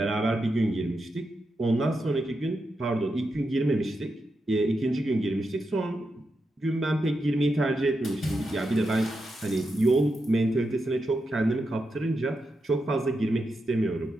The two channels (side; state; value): both; normal; correlation 0.86